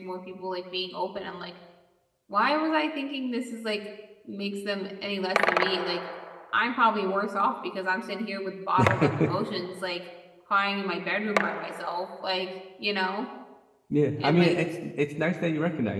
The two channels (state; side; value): identical; both; correlation 1.00